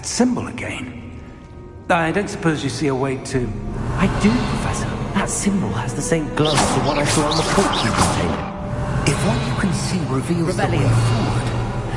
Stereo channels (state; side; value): identical; both; correlation 1.00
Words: symbol again. I don't suppose you see a way to... I do, Professor. That symbol has the same glow as the one I saw on the portkey container. If what you can see reveals the way forward,